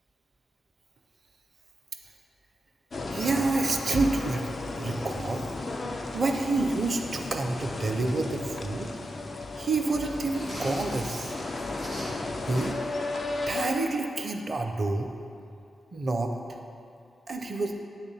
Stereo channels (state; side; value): normal; both; correlation 0.88